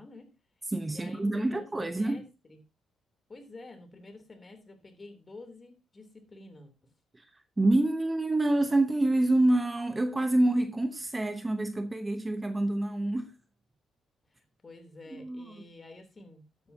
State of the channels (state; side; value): normal; both; correlation 0.97